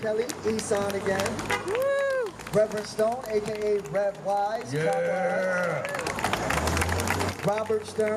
Kelly, Isan again. Woo. Reverend Stone, aka Rev Wise. Yeah. Robert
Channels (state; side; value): identical; both; correlation 1.00